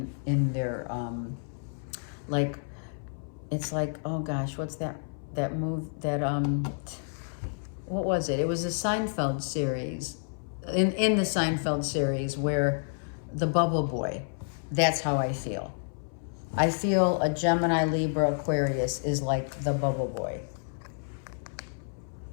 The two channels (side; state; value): right; silent; 58 dB below the other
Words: like, it's like, oh gosh, what's that move, what was it? It was a Seinfeld series, in the Seinfeld series where the bubble boy, that's how I feel. I feel a Gemini, Libra, Aquarius is like the bubble boy.